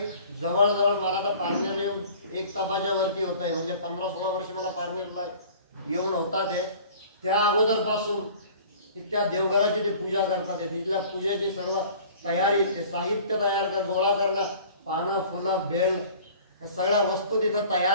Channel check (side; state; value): both; inverted; correlation -0.47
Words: जवळजवळ मला तर पारनेरला येऊन 1 तासाच्या वरती होत आहे म्हणजे 15-16 वर्ष मला पारनेरला येऊन होता ते त्या अगोदरपासून तिथल्या देवघराची ते पूजा करतात तिथल्या पूजेची सर्व तयारी ते साहित्य तयार कर गोळा करणं पानं फुलं बेल या सगळ्या वस्तू तिथं